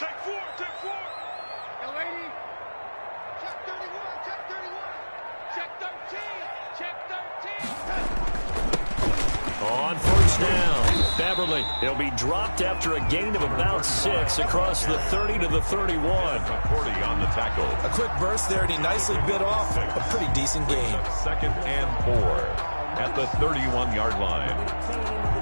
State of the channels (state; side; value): inverted; both; correlation -1.00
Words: 4, check 4. Yo, 80. Check 31, check 31. Check 13, check 13. On first down, Beverly. He'll be dropped after a gain of about 6 across the 30 to the 31. 40 on the tackle. A quick burst there, and he nicely bit off a pretty decent gain. 2nd and 4 at the 31-yard line.